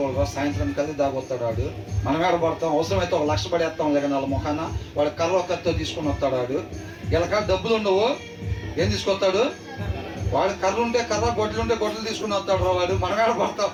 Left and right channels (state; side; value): identical; both; correlation 1.00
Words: సాయంత్రం కలిసి దాగొస్తాడు వాడు. మనం ఏడ పడతాం? అవసరమైతే 1 లక్ష పడేస్తాం లేక వాళ్ళ ముఖాన. వాడు కర్ర కత్తో తీసుకొని వస్తాడు వాడు. వీళ్ళ డబ్బులు ఉండవు, ఏం తీసుకొస్తాడు? వాడు కర్ర ఉంటే కర్ర, గొడ్డలు ఉంటే గొడ్డలు తీసుకుని వస్తాడు రా వాడు. మనం ఏడ పడతాం?